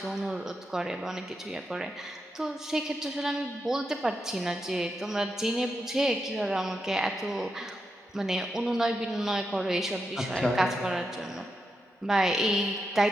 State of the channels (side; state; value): both; normal; correlation 0.85